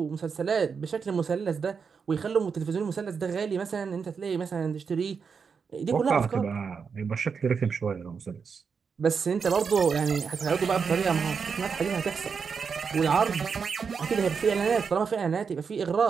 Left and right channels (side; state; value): left; quieter; 5.9 dB